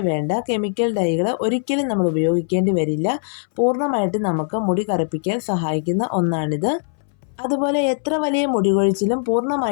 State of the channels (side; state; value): right; silent; 62 dB below the other